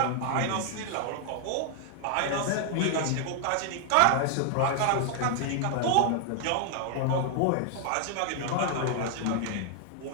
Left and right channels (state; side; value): different; both; correlation 0.00